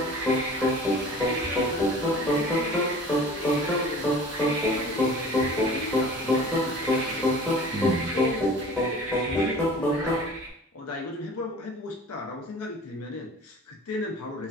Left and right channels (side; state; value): both; normal; correlation 0.44